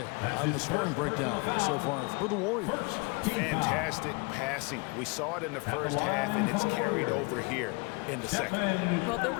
on the scoring breakdown so far for the Warriors. Fantastic passing. We saw it in the first half, and it's carried over here in the second. Well, their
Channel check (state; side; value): quieter; right; 29.3 dB